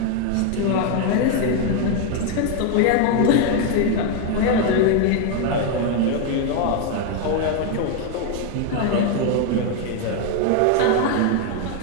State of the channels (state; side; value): different; both; correlation 0.01